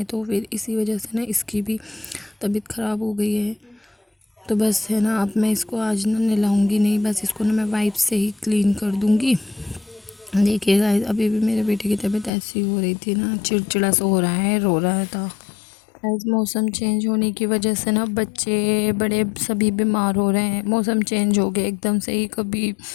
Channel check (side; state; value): right; drops out; at 12.3 s